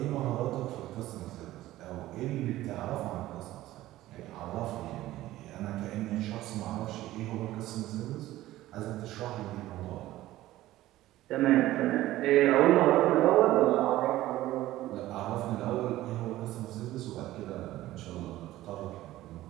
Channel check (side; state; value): left; quieter; 15.6 dB